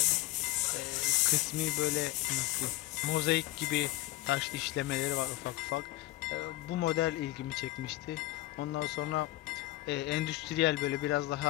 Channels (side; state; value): right; quieter; 17.3 dB